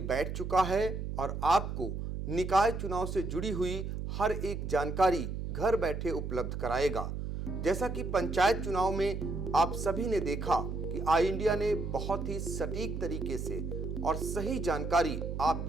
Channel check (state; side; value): noise; right; hum, 5 dB below the sound